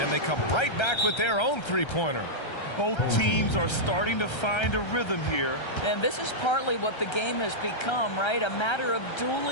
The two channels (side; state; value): right; late; 1.3 ms